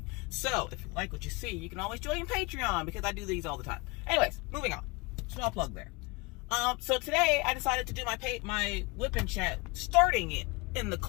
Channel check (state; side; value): quieter; right; 26.2 dB